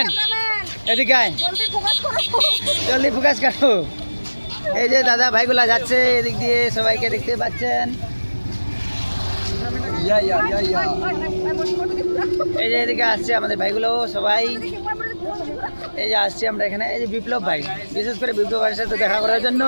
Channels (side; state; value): both; inverted; correlation -1.00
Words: এদিকে আয়, জলদি ফোকাস করো। এই যে দাদা ভাইগুলা যাচ্ছে এদিক দিয়ে, সবাইকে দেখতে পাচ্ছেন। এই যে এদিকে আসছে আমাদের ভাইগুলো সবাই, এই যে আসছি আমরা এখানে। এই যে বিপ্লব ভাই, বিশেষ করে বিপ্লব ভাইয়ের সাথে দেখা করার